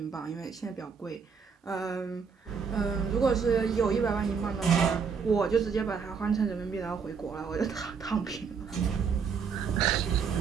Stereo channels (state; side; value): quieter; left; 6.0 dB